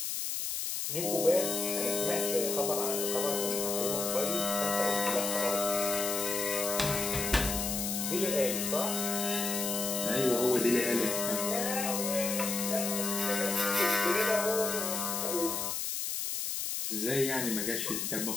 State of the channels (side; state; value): left; noise; hiss, 2 dB below the sound